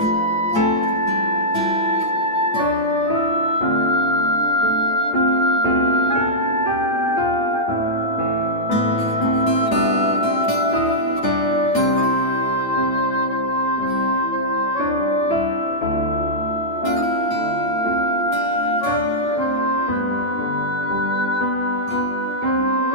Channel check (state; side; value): late; right; 8.8 ms